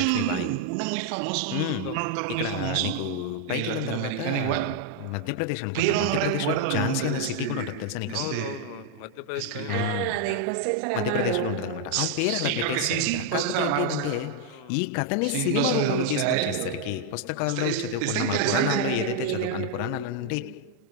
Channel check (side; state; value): both; different; correlation 0.00